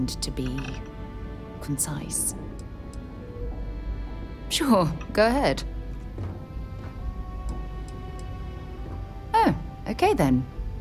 to be concise. Sure, go ahead. Oh, okay then.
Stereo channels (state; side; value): identical; both; correlation 1.00